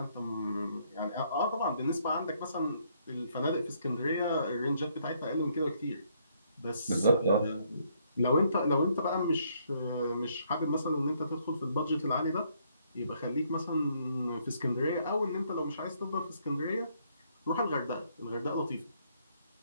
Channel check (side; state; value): both; inverted; correlation -0.70